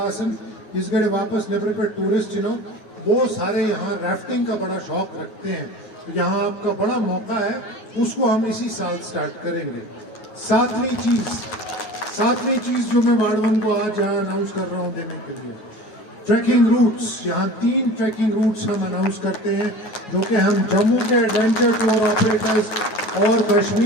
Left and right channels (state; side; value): late; right; 9.4 ms